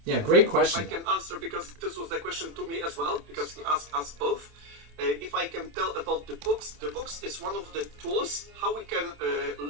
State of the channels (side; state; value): left; late; 27 ms